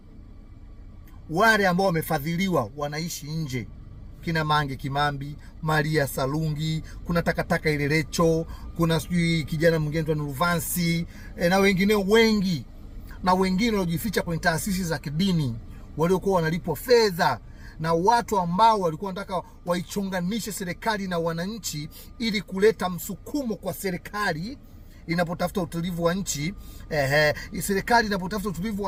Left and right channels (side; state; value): both; identical; correlation 1.00